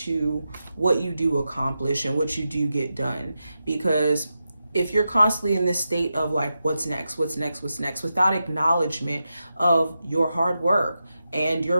what you do accomplish and what you do get done. Because if you're constantly in this state of like, what's next, without acknowledgement of your hard work and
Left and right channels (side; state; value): both; inverted; correlation -0.89